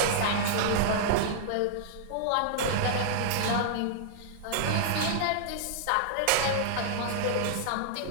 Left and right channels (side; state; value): both; different; correlation -0.01